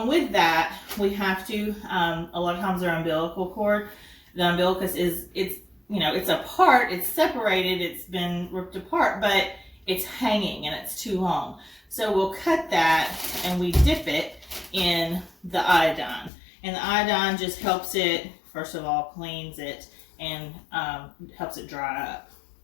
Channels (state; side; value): drops out; right; at 16.3 s